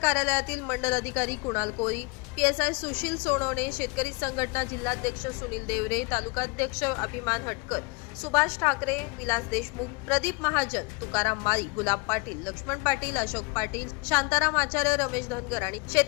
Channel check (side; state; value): right; quieter; 27.7 dB